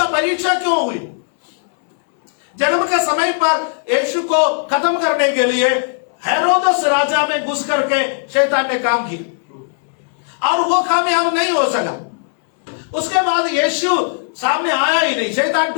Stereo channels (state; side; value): silent; right; 61 dB below the other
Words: परीक्षा क्यों हुई? जन्म के समय पर यीशु को खत्म करने के लिए हेरोदस राजा में घुस करके शैतान ने काम किया और वो कामयाब नहीं हो सका। उसके बाद यीशु सामने आया ही नहीं, शैतान